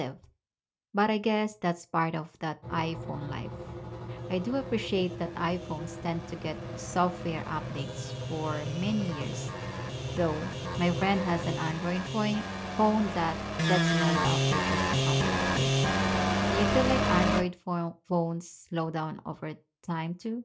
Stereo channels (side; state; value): both; identical; correlation 1.00